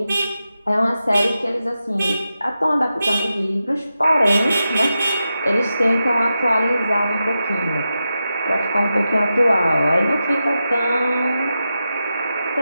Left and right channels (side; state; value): both; inverted; correlation -0.90